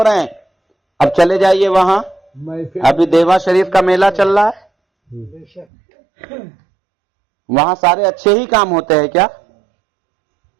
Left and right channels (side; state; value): left; drops out; at 5.7 s